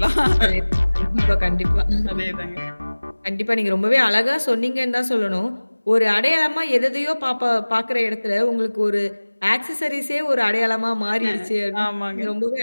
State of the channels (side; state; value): both; inverted; correlation -1.00